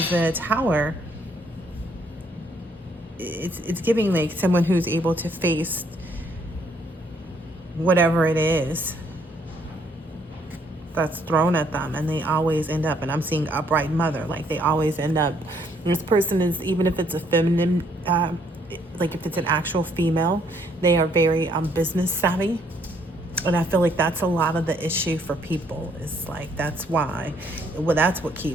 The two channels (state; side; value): normal; both; correlation 0.68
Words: the tower, it's giving like someone who's able to face whatever it is that's thrown at them, and they always end up, and I'm seeing upright mother, like they always end up, this person is, even if it's a feminine, like if it's an actual female, they are very business savvy. And I feel like that's a lot of the issue for people, is like, that's why, well, that's what